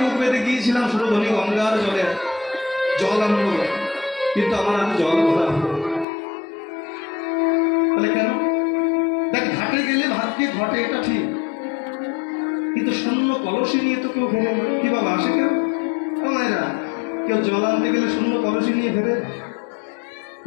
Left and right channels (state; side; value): drops out; right; at 6.1 s